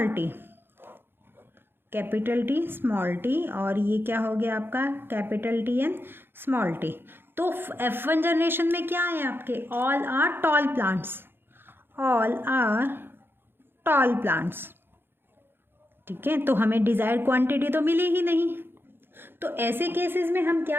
T, capital T small T, और ये क्या हो गया आपका capital T and small T. तो F1 जनरेशन में क्या है आपके, all are tall plants, all are tall plants, ठीक है। तो हमें डिजायर्ड क्वांटिटी तो मिली ही नहीं। तो ऐसे केसेस में हम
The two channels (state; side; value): late; left; 0.10 ms